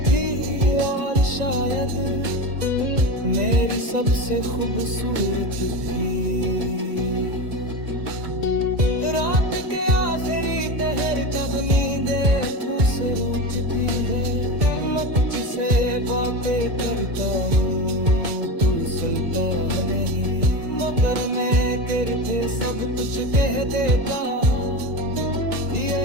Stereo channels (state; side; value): late; left; 1.9 ms